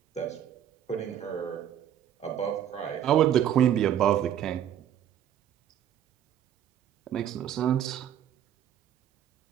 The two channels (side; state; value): left; quieter; 10.2 dB